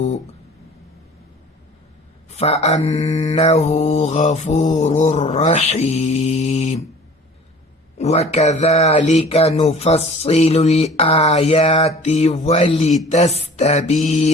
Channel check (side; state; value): both; normal; correlation 0.46